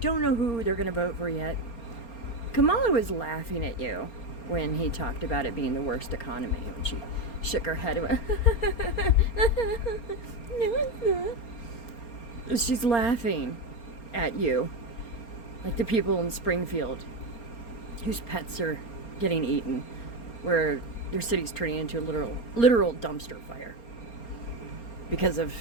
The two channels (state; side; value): late; right; 4.3 ms